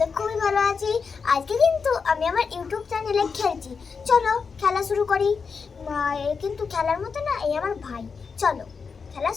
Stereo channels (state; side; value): quieter; right; 5.4 dB